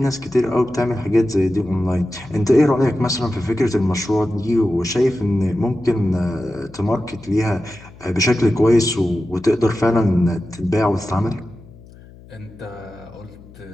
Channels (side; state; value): left; noise; hum, 21 dB below the sound